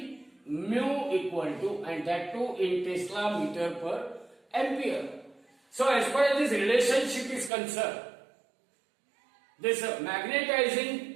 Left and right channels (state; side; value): drops out; left; at 7.5 s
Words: Mu equal to, and that too in Tesla meter per ampere. So as far as this relationship is concerned, this